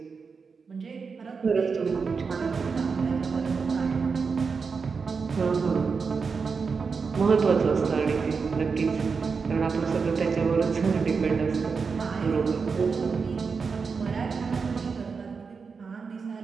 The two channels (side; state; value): left; quieter; 5.2 dB